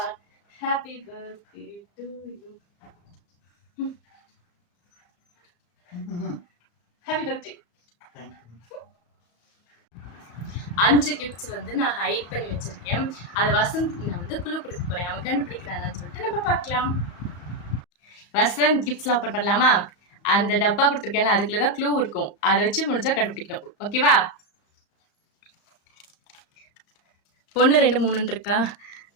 happy birthday to you, happy birthday. 5 gifts வந்து நான் ஹைட் பண்ணி வச்சிருக்கேன். அதை வசந்த் நான் வந்து குழு கொடுக்க போறேன். அவன் கண்டுபிடிக்கிறான்னு சொல்லிட்டு நம்ம பார்க்கலாம். வசந்த் கிஃப்ட்ஸ்லாம் ஓப்பன் பண்ணலாமா? அந்த டப்பா கொடுத்துருக்கேன்ல, அதுக்குள்ளதான் க்ளூ இருக்கும். அதை வச்சு முடிஞ்சா கண்டுபிடிக்கணும். ஓகேவா? 1 2 3 இருக்கா?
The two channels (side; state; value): right; late; 34 ms